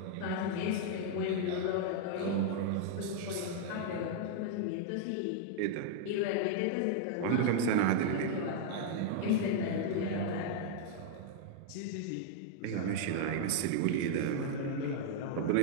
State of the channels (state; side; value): different; both; correlation -0.01